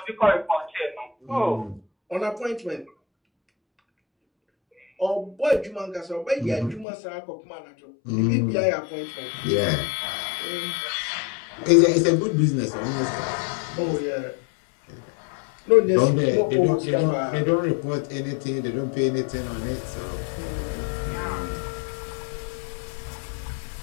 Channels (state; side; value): drops out; right; at 6.9 s